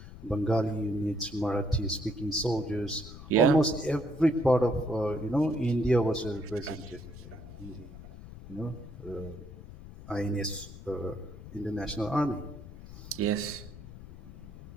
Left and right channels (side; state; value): left; noise; rumble, 15 dB below the sound